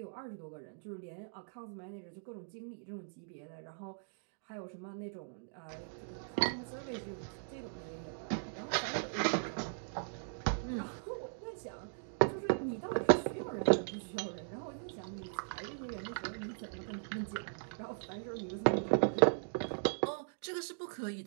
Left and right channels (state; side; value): silent; left; digital silence